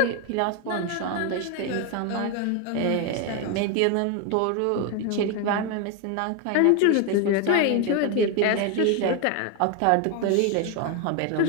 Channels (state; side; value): different; both; correlation 0.01